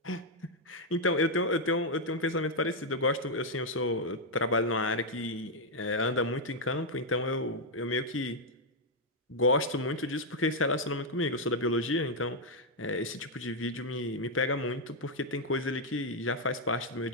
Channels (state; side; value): normal; both; correlation -0.01